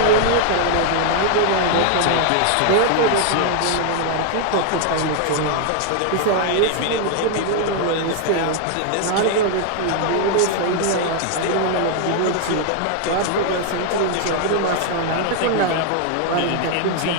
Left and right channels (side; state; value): both; different; correlation 0.00